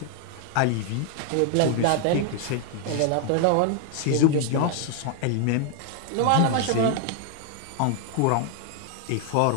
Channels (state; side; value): different; both; correlation 0.00